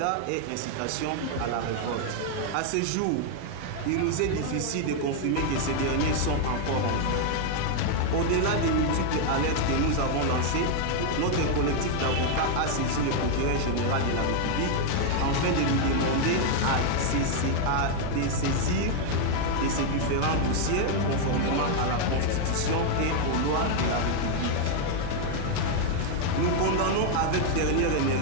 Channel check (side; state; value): both; different; correlation 0.00